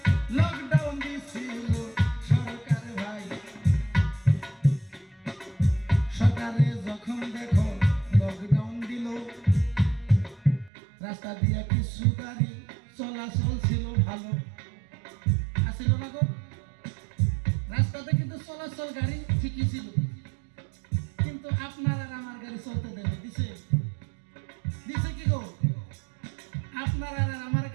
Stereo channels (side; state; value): left; drops out; at 10.7 s